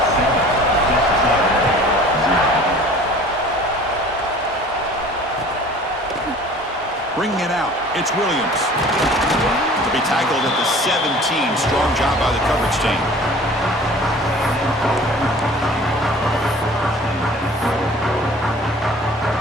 Bringing it out, it's Williams. To be tackled at the 17. Strong job by the coverage team.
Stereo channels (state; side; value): normal; both; correlation 0.47